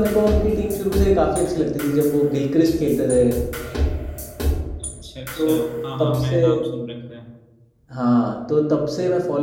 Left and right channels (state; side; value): identical; both; correlation 1.00